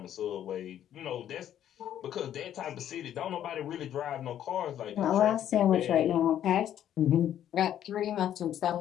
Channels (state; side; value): quieter; right; 10.8 dB